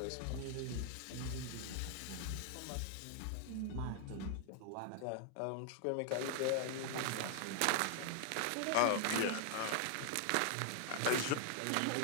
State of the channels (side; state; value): both; different; correlation 0.00